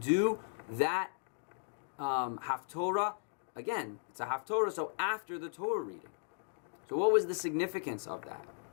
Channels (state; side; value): silent; right; digital silence